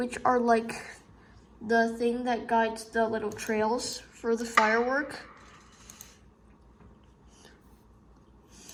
are like the thing that guides the little trails for the firework,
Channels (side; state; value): both; identical; correlation 1.00